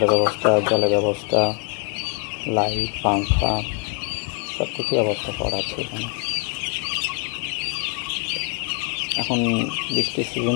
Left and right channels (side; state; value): right; quieter; 33.2 dB